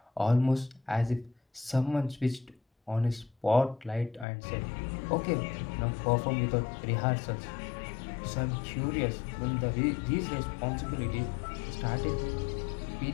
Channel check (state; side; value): drops out; right; at 4.2 s